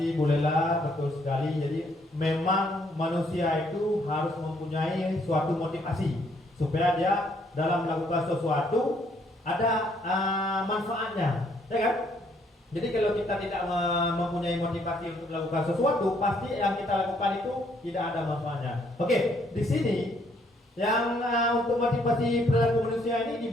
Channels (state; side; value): normal; both; correlation 0.68